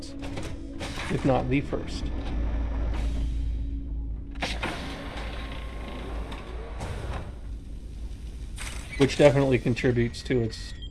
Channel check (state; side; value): identical; both; correlation 1.00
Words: if not the first. Which definitely contributes to its